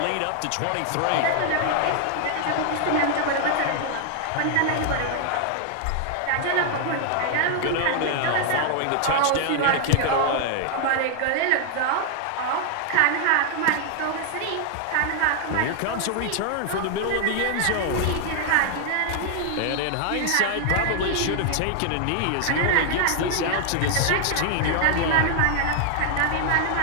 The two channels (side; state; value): both; different; correlation 0.00